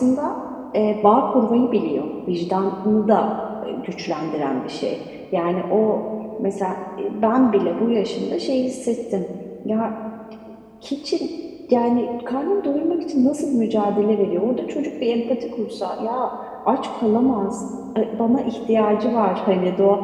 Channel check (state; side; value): identical; both; correlation 1.00